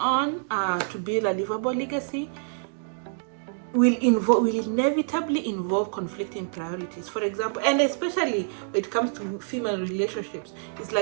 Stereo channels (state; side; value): silent; left; digital silence